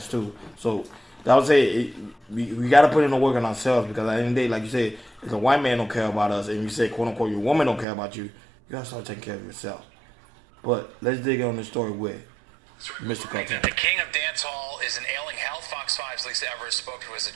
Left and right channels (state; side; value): drops out; left; at 7.9 s